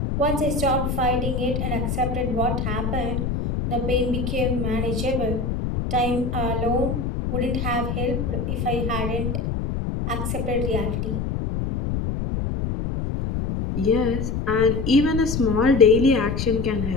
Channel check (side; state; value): left; noise; rumble, 2 dB below the sound